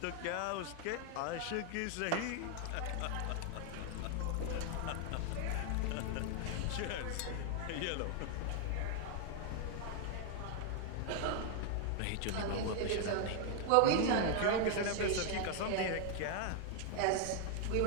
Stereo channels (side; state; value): both; different; correlation 0.00